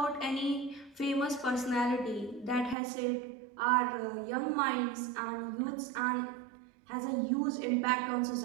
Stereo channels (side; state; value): left; drops out; at 2.8 s